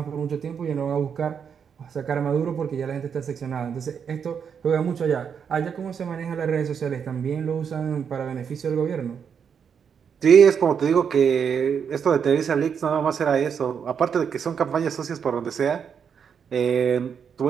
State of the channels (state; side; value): quieter; left; 7.1 dB